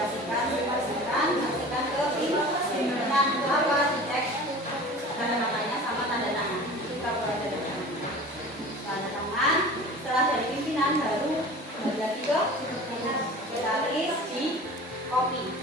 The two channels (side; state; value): both; normal; correlation 0.39